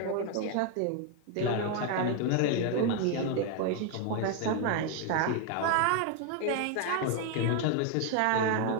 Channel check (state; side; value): different; both; correlation 0.01